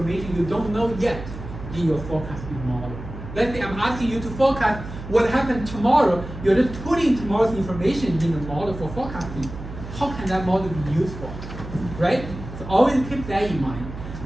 you don't know yet in your forecasting model. Let's say I'm asking you to forecast what happened tomorrow. You're just putting tomorrow's information in the model for forecasting. How can that model be useful, right? So always keep that in mind.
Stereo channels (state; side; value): noise; right; hum, 11 dB below the sound